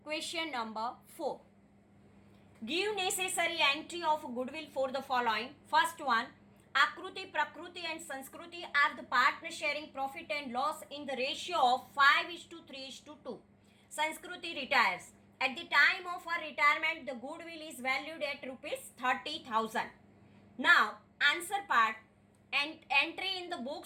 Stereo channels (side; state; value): both; identical; correlation 1.00